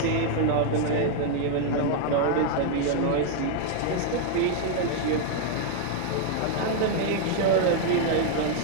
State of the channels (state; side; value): different; both; correlation 0.00